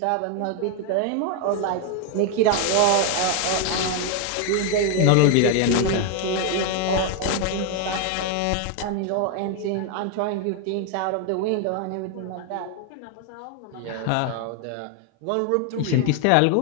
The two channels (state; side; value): different; both; correlation 0.01